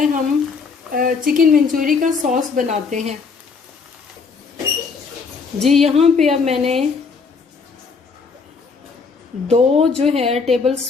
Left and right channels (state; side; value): quieter; right; 5.0 dB